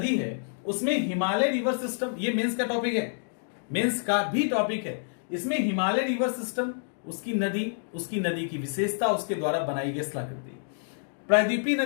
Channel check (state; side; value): silent; right; digital silence